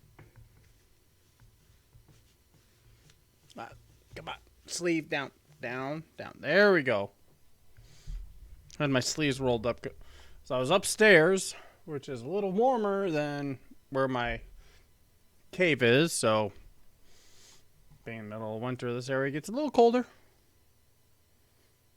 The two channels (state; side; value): identical; both; correlation 1.00